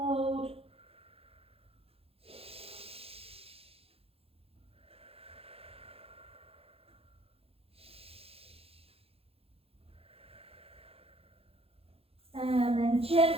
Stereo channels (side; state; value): left; late; 0.28 ms